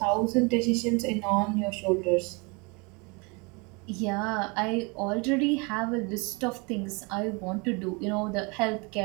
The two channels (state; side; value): quieter; left; 29.9 dB